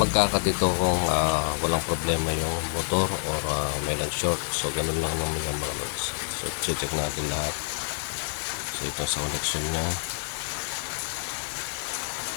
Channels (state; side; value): silent; right; digital silence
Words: ito kung walang problema yung motor or may nag-short. So ganun lang naman yung mga loads. So check natin lahat. So ito sa connection nya.